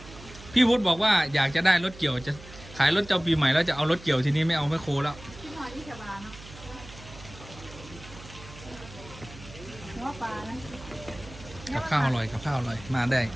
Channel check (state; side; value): noise; right; hum, 17 dB below the sound